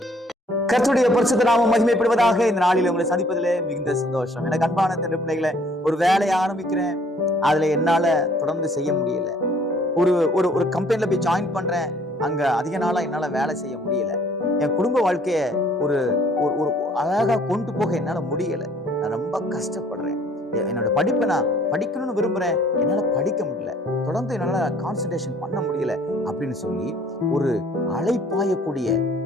கர்த்தருடைய பரிசுத்த நாமம் மகிமைப்படுவதாக. இந்த நாளில் உங்களை சந்திப்பதிலே மிகுந்த சந்தோஷம். எனக்கு அன்பான தன் பிள்ளைகளை, ஒரு வேலையை ஆரம்பிக்கிறேன், அதுல என்னால தொடர்ந்து செய்ய முடியல. ஒரு ஒரு ஒரு கம்பெனில போய் ஜாயின் பண்றேன், அங்க அதிக நாளா என்னால வேலை செய்ய முடியல. என் குடும்ப வாழ்க்கைய ஒரு ஒரு அழகா கொண்டு போக என்னால முடியல. நான் ரொம்ப கஷ்டப்படுறேன். என்னோட படிப்பை நான் படிக்கணும்னு விரும்புறேன், என்னால படிக்க முடியல, தொடர்ந்து என்னால கான்சன்ட்ரேஷன் பண்ண முடியல அப்படின்னு சொல்லி ஒரு அலைப்பாயக்கூடிய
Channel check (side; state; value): both; normal; correlation 0.59